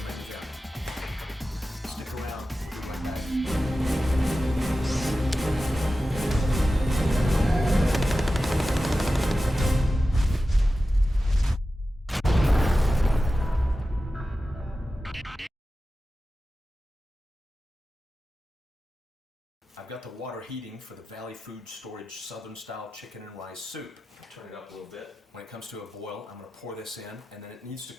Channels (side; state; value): both; normal; correlation 0.94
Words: main event. Stick around, we'll be right back. I've got the water heating for the Valley Food Storage Southern Style Chicken and Rice Soup. Turn it up a little bit. When it comes to a boil, I'm going to pour this in, and then it needs to